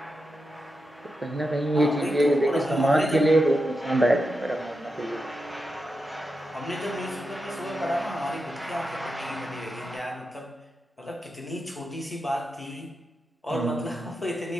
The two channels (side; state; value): both; normal; correlation 0.88